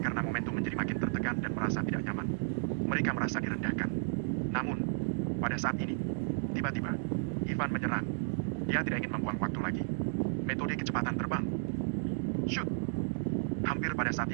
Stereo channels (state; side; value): silent; left; digital silence